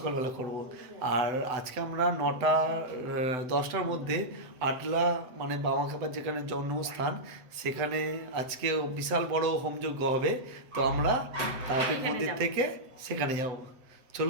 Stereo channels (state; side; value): late; left; 7.9 ms